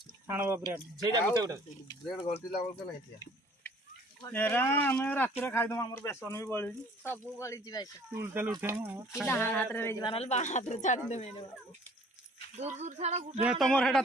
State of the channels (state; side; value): normal; both; correlation 0.54